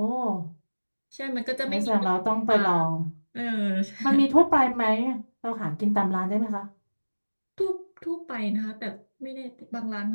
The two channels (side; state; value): both; inverted; correlation -1.00